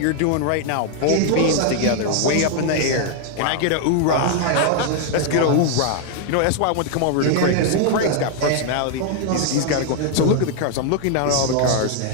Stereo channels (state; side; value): different; both; correlation 0.00